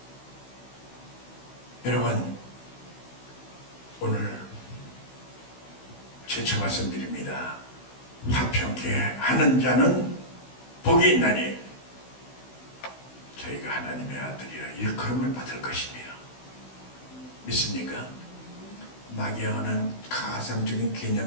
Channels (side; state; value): right; late; 16 ms